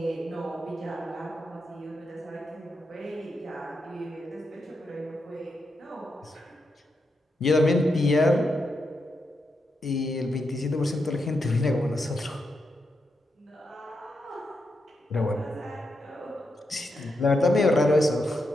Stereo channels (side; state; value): both; normal; correlation 0.84